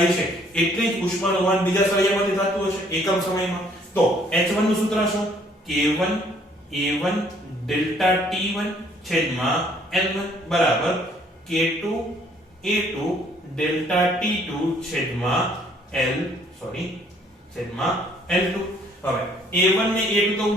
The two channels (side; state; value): both; normal; correlation 0.62